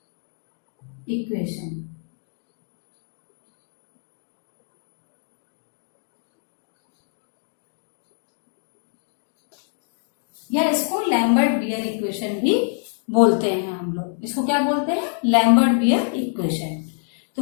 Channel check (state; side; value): silent; right; digital silence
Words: इक्वेशन। या इसको लैम्बर्ट बियर इक्वेशन भी बोलते हैं हम लोग, इसको क्या बोलते हैं, लैम्बर्ट बियर इक्वेशन।